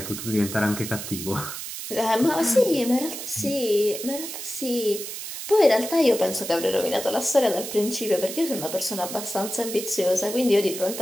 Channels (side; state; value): right; noise; hiss, 8 dB below the sound